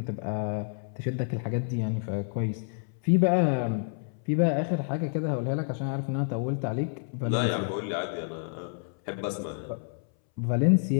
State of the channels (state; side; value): silent; right; 59 dB below the other